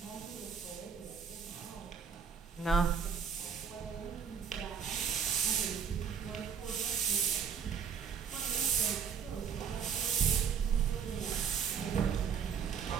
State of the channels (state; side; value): quieter; left; 7.0 dB